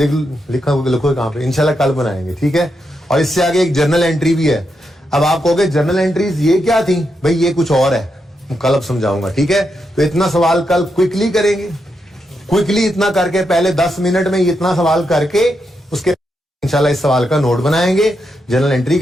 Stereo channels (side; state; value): both; normal; correlation 0.83